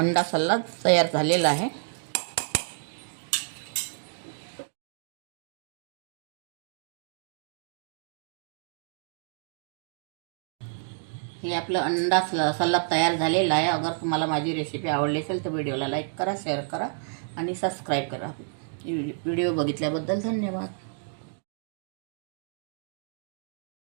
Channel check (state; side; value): silent; left; digital silence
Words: सलाद तयार झालेला आहे। हे आपलं अंडा सलाद तयार झालेला आहे। अगर तुम्हाला माझी रेसिपी आवडली असेल तर व्हिडिओला लाईक करा, शेअर करा आणि सबस्क्राईब करा। व्हिडिओ बघितल्याबद्दल धन्यवाद।